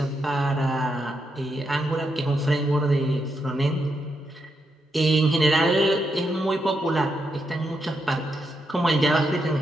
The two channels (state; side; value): normal; both; correlation 0.82